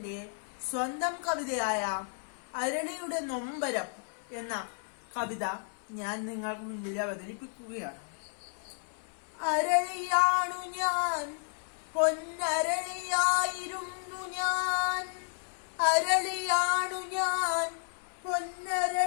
സ്വന്തം കവിതയായ അരളിയുടെ നൊമ്പരം എന്ന കവിത ഞാൻ നിങ്ങൾക്ക് മുന്നിൽ അവതരിപ്പിക്കുകയാണ്. അരളിയാണു ഞാൻ, പൊന്നരളിയായിരുന്നു ഞാൻ. അരളിയാണു ഞാൻ,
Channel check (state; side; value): silent; right; 56 dB below the other